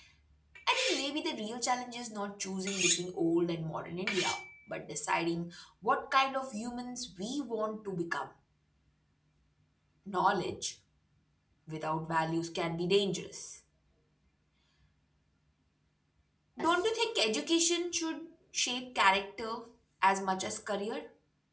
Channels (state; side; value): identical; both; correlation 1.00